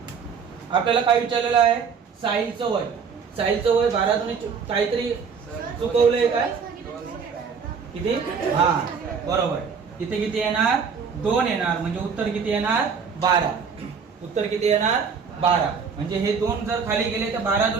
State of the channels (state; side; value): quieter; left; 6.0 dB